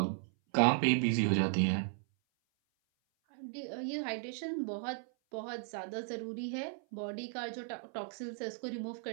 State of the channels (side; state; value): left; silent; 54 dB below the other